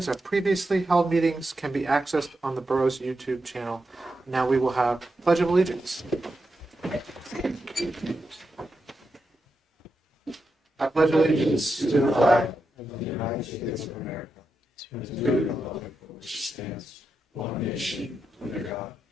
of previously held meetings, can be accessed on the borough's YouTube channel. Now we will have Pledge of Allegiance. I pledge allegiance to the flag of the United States of America, to the republic which stands one nation under God,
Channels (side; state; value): both; normal; correlation 0.87